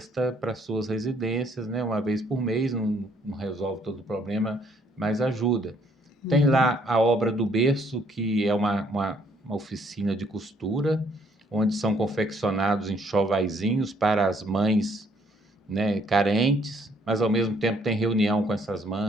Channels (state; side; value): normal; both; correlation 0.66